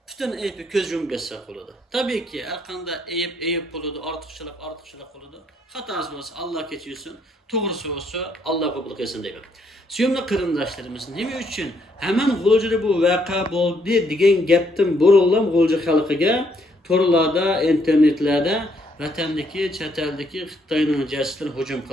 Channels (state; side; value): normal; both; correlation 0.71